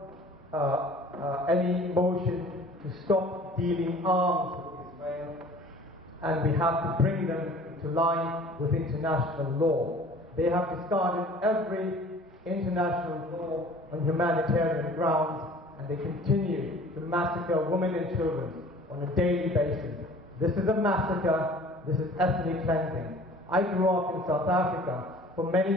any motion to stop dealing arms with Israel, and we have to bring them into line with international law. They have discarded every international law on humanitarian grounds, and they continue to massacre women and children on a daily basis. This is a massacre. This is ethnic cleansing. I grew up in South Africa for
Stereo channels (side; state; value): both; normal; correlation 0.48